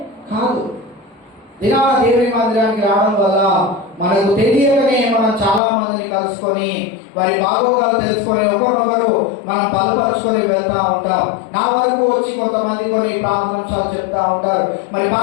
దినా దేవుని మందిరానికి రావడం వల్ల మనకు తెలియకనే మనం చాలా మందిని కలుసుకొని వారి బాగోగాలు తెలుసుకొని ఒకరినొకరు మనం బలపరుచుకొని వెళ్తా ఉంటాం. నా వరకు వచ్చి కొంతమంది కొన్ని ప్రార్థనాంశాలు చెప్తా ఉంటారు, మరి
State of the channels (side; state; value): right; drops out; at 5.6 s